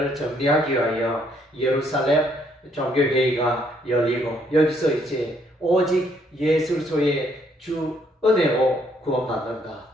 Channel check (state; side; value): normal; both; correlation 0.69